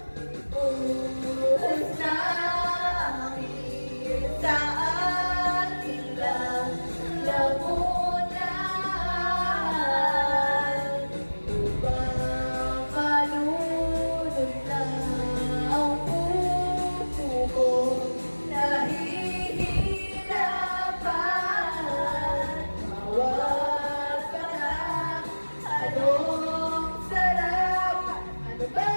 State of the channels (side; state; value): both; inverted; correlation -1.00